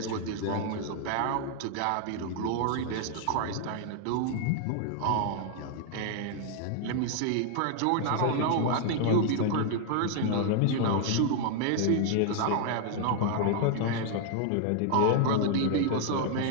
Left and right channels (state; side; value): different; both; correlation 0.00